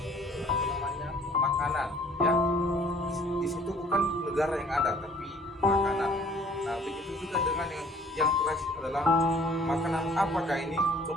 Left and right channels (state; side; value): normal; both; correlation 0.55